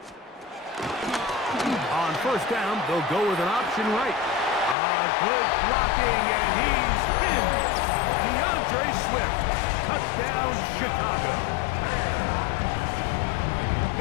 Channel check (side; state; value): right; drops out; at 4.8 s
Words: On 1st down, they'll go with an option right. Good blocking, and he's in. DeAndre Swift. Touchdown, Chicago.